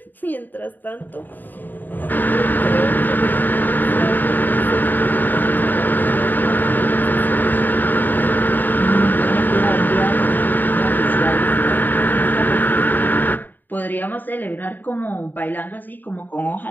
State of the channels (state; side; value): late; right; 0.089 ms